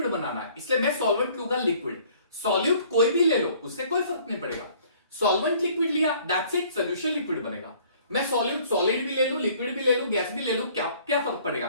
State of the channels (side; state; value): both; inverted; correlation -0.56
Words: बनाना है, इसलिए मैं सॉल्वेंट लूंगा लिक्विड। सॉल्यूट कोई भी ले लो उससे कोई फर्क नहीं पड़ेगा, सॉल्वेंट लिक्विड लिया दैट्स इट, सोल्यूशन लिक्विड बनेगा। मैं सॉल्यूट सॉलिड भी ले लूं, लिक्विड भी ले लूं, गैस भी ले लूं, क्या क्या फर्क पड़ेगा,